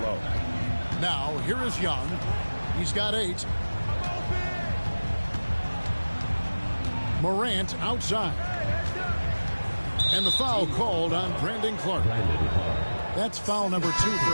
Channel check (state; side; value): inverted; both; correlation -1.00